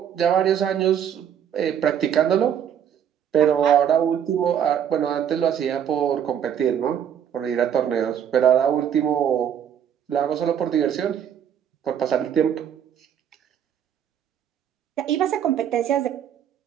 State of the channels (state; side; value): quieter; left; 9.0 dB